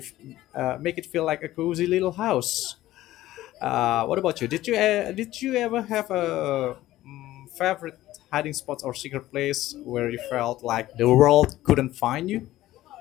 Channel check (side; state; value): right; quieter; 15.4 dB